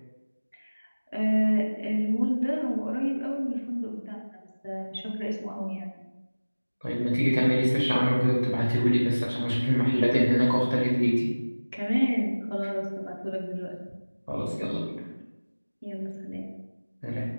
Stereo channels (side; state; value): both; inverted; correlation -1.00